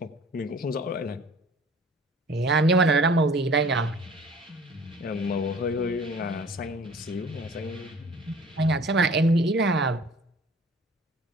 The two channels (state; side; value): normal; both; correlation 0.49